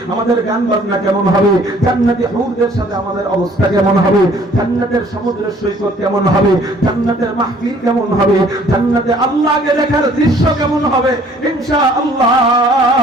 আমাদের গান বাজনা কেমন হবে? জান্নাতি হুরদের সাথে আমাদের অবস্থা কেমন হবে? জান্নাতের সমুদ্রের সৈকত কেমন হবে? জান্নাতের মাহফিল কেমন হবে? জান্নাতে আল্লাহকে দেখার দৃশ্য কেমন হবে? ইনশাআল্লাহ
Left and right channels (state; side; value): normal; both; correlation 0.57